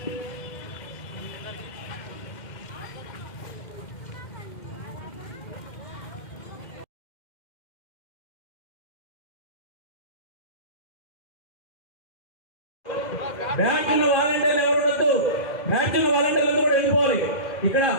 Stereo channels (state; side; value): late; right; 2.1 ms